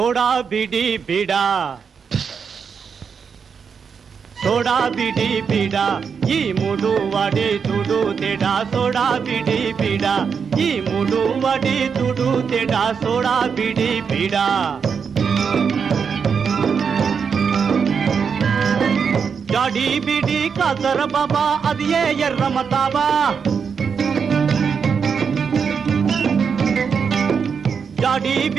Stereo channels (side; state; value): left; quieter; 6.3 dB